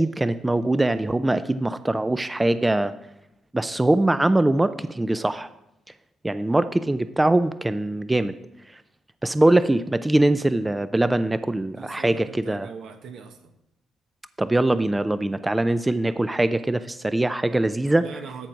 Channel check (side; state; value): both; normal; correlation 0.98